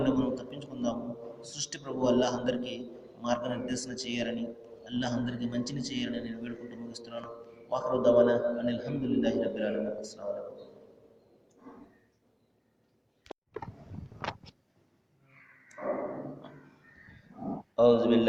మనం తప్పించుకుందాము. సృష్టి ప్రభు అల్లాహ్ అందరికీ మార్గనిర్దేశన చేయాలని, అల్లాహ్ అందరికీ మంచిని చేయాలని నేను వేడుకుంటూ ముగిస్తున్నాను. వాఖరు దవానా అనిల్ హమ్దులిల్లాహి రబ్బిల్ ఆలమీన్. అస్సలాము అలైకుం. أعوذ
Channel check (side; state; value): both; identical; correlation 1.00